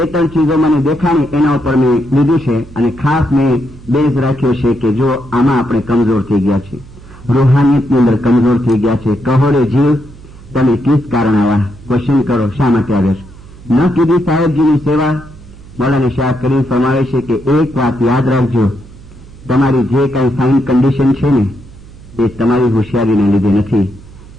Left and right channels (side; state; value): right; noise; hum, 20 dB below the sound